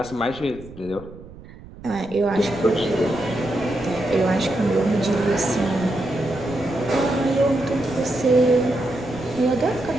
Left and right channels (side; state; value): right; noise; rumble, 17 dB below the sound